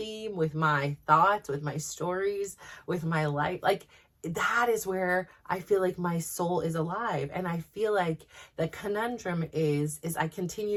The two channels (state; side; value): identical; both; correlation 1.00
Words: with my thoughts, with my stories, with my life, like that is where I feel like my soul is alive. And I feel like the conundrum is I